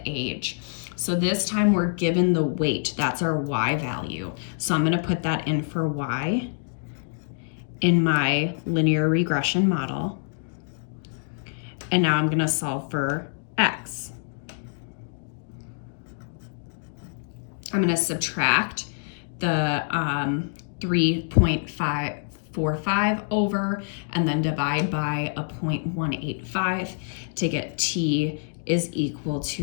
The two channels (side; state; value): right; silent; digital silence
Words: age? So this time we're given the weight, that's our Y value. So I'm gonna put that in for Y in my linear regression model. And now I'm gonna solve for X. I'm gonna subtract the 3.545 over and then divide by a 0.185 to get T is equal